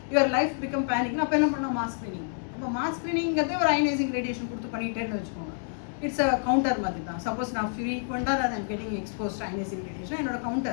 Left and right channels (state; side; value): silent; right; digital silence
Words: யுவர் லைஃப் பிகம் பேனிக்னா அப்போ என்ன பண்ணலாம்? Mass screening. அப்போ மாஸ் ஸ்க்ரீனிங்கிறதே ஒரு அயனைசிங் ரேடியேஷன் கொடுத்து பண்ணிட்டேன்னு வச்சுக்கோங்க. இட்ஸ் அ கவுண்டர் மாதிரி தான். சப்போஸ் நான் ஃப்ரீக்வெண்ட்டாக I am getting exposed ionising radiation, என்னோட